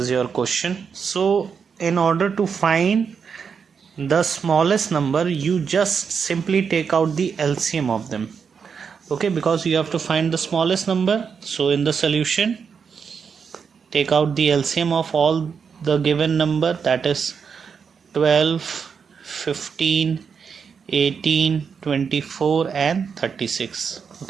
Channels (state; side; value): quieter; left; 6.2 dB